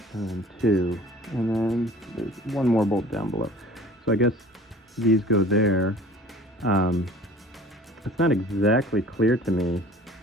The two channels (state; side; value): normal; both; correlation 0.47